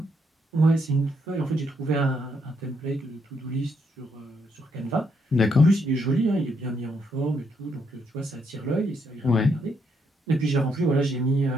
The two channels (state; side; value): normal; both; correlation 0.75